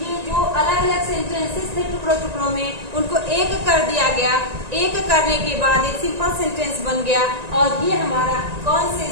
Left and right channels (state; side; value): late; left; 1.9 ms